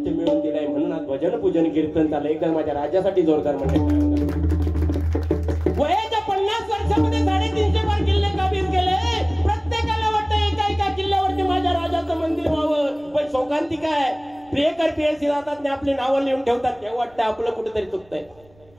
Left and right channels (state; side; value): noise; right; rumble, 29 dB below the sound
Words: मिळवून दिलाय म्हणून आज भजन पूजन कीर्तन चाललं. एकदा माझ्या राज्यासाठी जोरदार म्हणजे वयाच्या 50 वर्षामध्ये 350 बार किल्ले काबीज केले. प्रत्येकाला वाटतं एका एका किल्ल्यावरती माझ्या राजाचं मंदिर व्हावं. पण शोकांती काय, प्रियकर प्रियसी राहतात आपली नावं लिहून ठेवतात. तेव्हा वाटतं आपलं कुठेतरी चुकतंय.